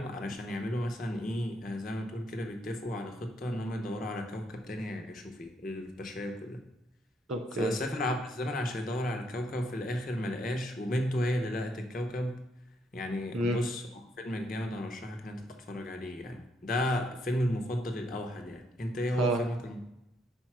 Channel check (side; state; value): both; normal; correlation 0.75